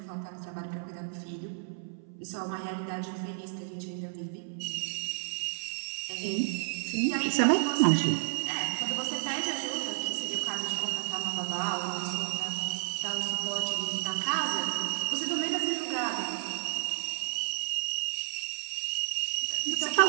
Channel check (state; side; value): silent; left; 57 dB below the other